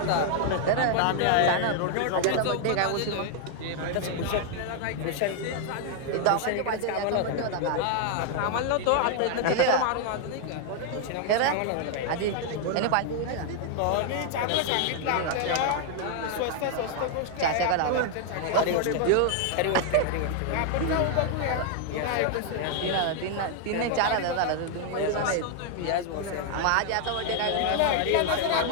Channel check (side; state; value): both; different; correlation 0.00